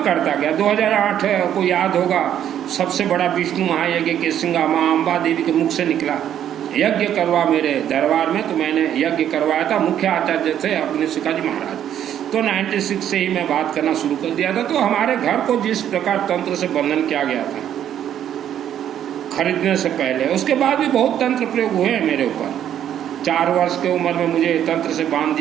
करता गया। 2008 को याद होगा सबसे बड़ा विष्णु महायज्ञ केसिंगा माँ अम्बा देवी के मुख से निकला, यज्ञ करवा मेरे दरबार में। तो मैंने यज्ञ करवाया था, मुख्य आचार्य थे अपने शिकाजी महाराज। तो 96 से ही मैं बात करना शुरू कर दिया था। तो हमारे घर को जिस प्रकार तंत्र से बंधन किया गया था खरीदने से पहले, उसके बाद भी बहुत तंत्र प्रयोग हुए हैं मेरे ऊपर। 4 वर्ष की उम्र में मुझे तंत्र से बांध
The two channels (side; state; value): left; quieter; 10.3 dB